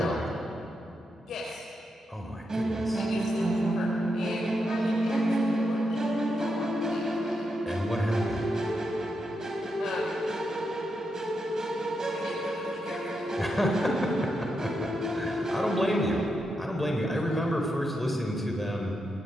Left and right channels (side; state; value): both; normal; correlation 0.84